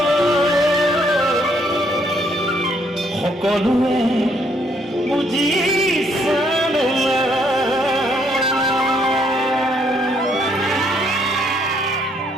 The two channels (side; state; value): both; normal; correlation 0.69